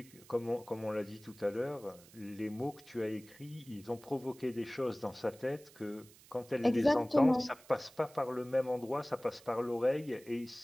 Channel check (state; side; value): noise; right; hiss, 23 dB below the sound